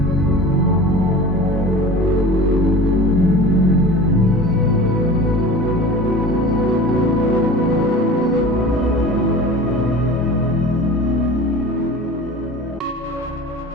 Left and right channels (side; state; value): both; normal; correlation 0.38